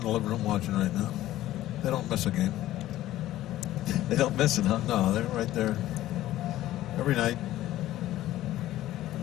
the living room watching right now. They don't miss a game. They don't miss it, huh? No, they're right there every night.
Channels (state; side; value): quieter; right; 14.6 dB